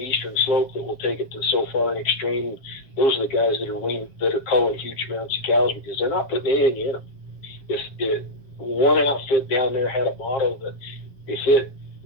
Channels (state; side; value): late; right; 7.4 ms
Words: slope that will take it to so far and extreme. Those are the guys that are culling huge amounts of cows because they're not putting anything in them. If one outfit down there had a motto that if it